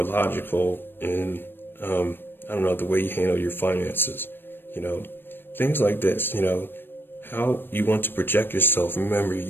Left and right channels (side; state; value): right; late; 0.098 ms